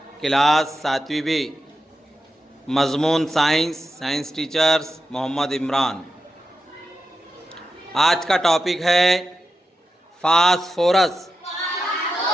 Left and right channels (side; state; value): both; normal; correlation 0.90